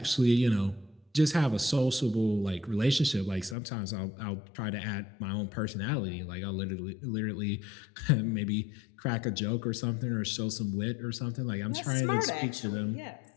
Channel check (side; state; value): right; drops out; at 3.6 s